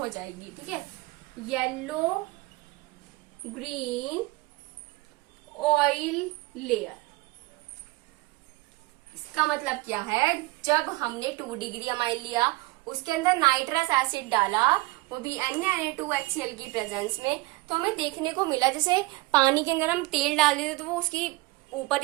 जाएगी, ठीक है। Yellow green oil layer. इसका मतलब क्या है, जब हमने 2 डिग्री अमाइन लिया, उसके अंदर नाइट्रस एसिड डाला, वो भी NaNO2HCl की प्रेजेंस में, तो हमें देखने को मिला जैसे पानी के अंदर हम तेल डाल देते तो वो उसकी ऊपर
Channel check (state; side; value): quieter; left; 21.9 dB